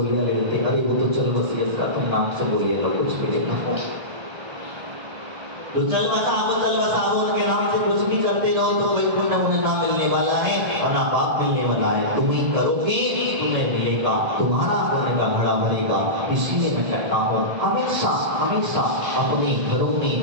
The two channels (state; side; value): late; left; 1.8 ms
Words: ले लेते, अरे वो तो चल बसी इसका तुम नाम से बोलिए लो, कुछ भी लेना हो तो चल बसाओ उनके नाम से कुछ भी करते रहो, तो कोई पुण्य मुझे ना मिलने वाला है और ना पाप मिलने वाला है। तुम ही करोगे तुम्हें मिलेगा, तुम्हारा पुण्य का घड़ा भरेगा। इसलिए मैं कहता हूँ हमेशा हमेशा अपने घरों